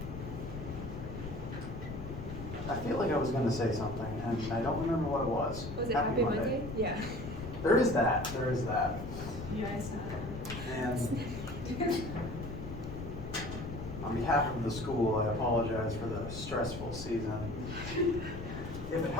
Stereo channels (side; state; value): left; noise; rumble, 9 dB below the sound